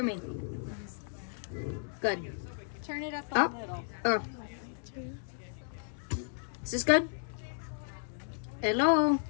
me? Good. Turn it up a little. Oh. Is this good? Hello?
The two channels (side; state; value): right; silent; digital silence